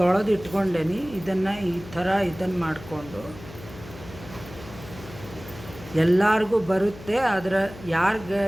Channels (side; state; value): left; noise; hum, 17 dB below the sound